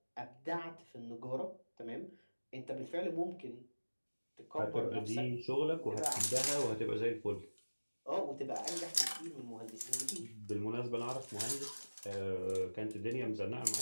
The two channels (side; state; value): both; inverted; correlation -1.00